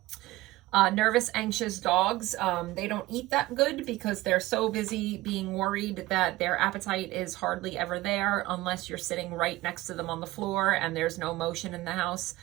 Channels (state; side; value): quieter; left; 18.4 dB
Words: Nervous, anxious dogs, they don't eat that good because they're so busy being worried that their appetite is hardly ever there unless you're sitting right next to them on the floor and there's no motion in the house.